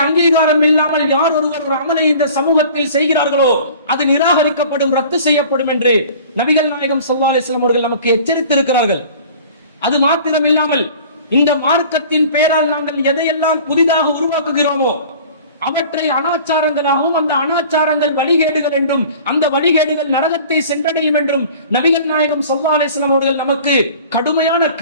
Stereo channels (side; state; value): both; inverted; correlation -0.45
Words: அங்கீகாரம் இல்லாமல் யார் ஒருவர் ஒரு அமலை இந்த சமூகத்தில் செய்கிறார்களோ அது நிராகரிக்கப்படும், ரத்து செய்யப்படும் என்று நபிகள் நாயகம் ஸல்லல்லாஹு அலைஹி வஸல்லம் அவர்கள் நமக்கு எச்சரித்திருக்கிறார்கள். அது மாத்திரம் இல்லாமல் இந்த மார்க்கத்தின் பெயரால் நாங்கள் எதையெல்லாம் புதிதாக உருவாக்குகிறோமோ அவற்றை அனாச்சாரங்களாகவும், அந்த அனாச்சாரங்கள் வழிகேடுகள் என்றும், அந்த வழிகேடுகள் நரகத்தை சென்றடையும் என்றும் நபிகள் நாயகம் ஸல்லல்லாஹு அலைஹி வஸல்லம் அவர்கள் நமக்கு கடுமையான